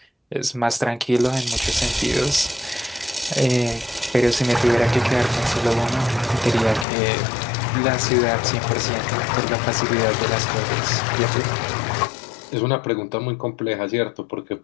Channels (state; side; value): drops out; right; at 6.9 s